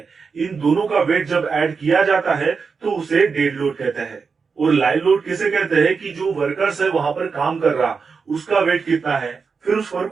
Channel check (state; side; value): quieter; left; 5.2 dB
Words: इन दोनों का वेट जब ऐड किया जाता है तो उसे डेड लोड कहते हैं। और लाइव लोड किसे कहते हैं कि जो वर्कर्स है वहां पर काम कर रहा उसका वेट कितना है, फिर उस पर